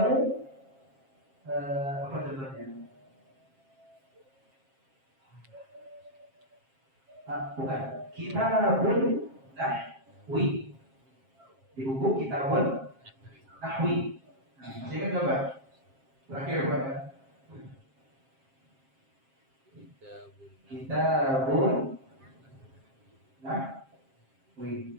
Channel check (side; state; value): left; late; 7.5 ms